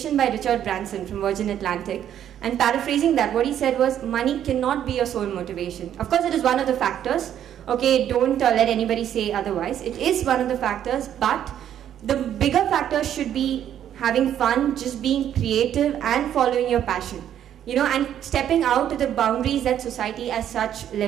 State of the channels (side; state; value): left; quieter; 10.3 dB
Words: by Richard Branson from Virgin Atlantic, and paraphrasing that, what he said was, money cannot be your sole motivation. Of course, it is one of the factors. Okay, don't let anybody say otherwise. It is one of the factors, but the bigger factor should be having fun, just being creative and following your passion. And stepping out to the boundaries that society as such